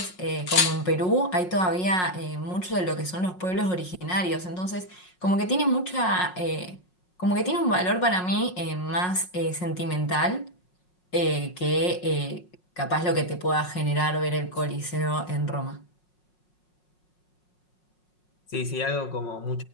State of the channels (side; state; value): right; late; 5.5 ms